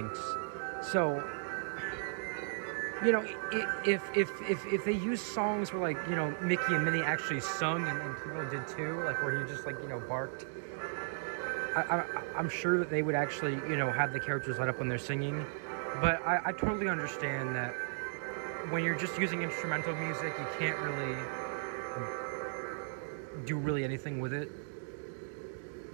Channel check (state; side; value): silent; left; digital silence